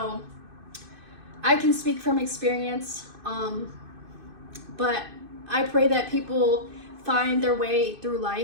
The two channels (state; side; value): late; left; 2.6 ms